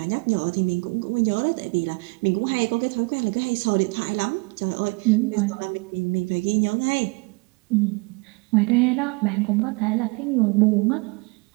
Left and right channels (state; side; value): quieter; left; 29.2 dB